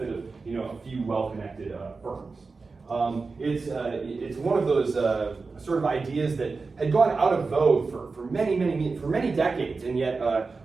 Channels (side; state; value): left; quieter; 4.2 dB